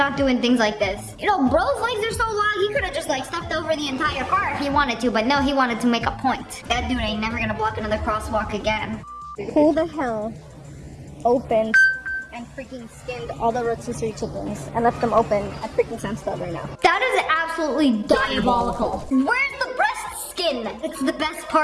doing things like this. You know, bro's legs are so long, he could've just like stepped over the entire car if he wanted to, but no, he wanted to make a point. That dude ain't never gonna block another crosswalk again. Who the hell opened and freaking skinned all the rotisserie chickens and left them open at freaking Sam's Club right now? That is absolutely diabolical. Where's the breast skin? It's the best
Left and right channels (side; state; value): both; identical; correlation 1.00